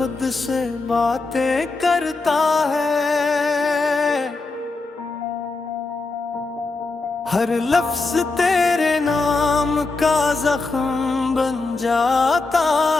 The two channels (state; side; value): quieter; right; 3.6 dB